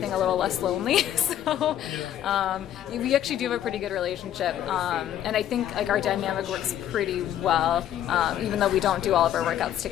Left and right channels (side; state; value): right; quieter; 11.2 dB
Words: a little less lonely. So we actually do have a pretty good relationship, and I think like our dynamic works pretty well, even though we don't do all of our workouts